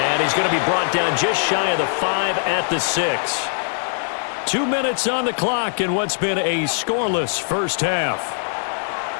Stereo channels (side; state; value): right; silent; digital silence